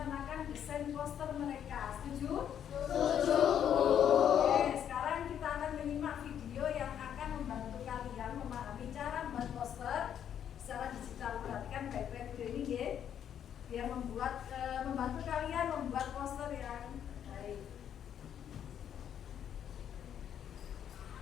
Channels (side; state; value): right; quieter; 9.3 dB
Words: desain poster mereka. Setuju? Setuju. Oke, sekarang kita akan menyimak video yang akan membantu kalian memahami cara membuat poster secara digital. Perhatikan baik-baik video ini ya, biar membantu kalian membuat poster yang baik.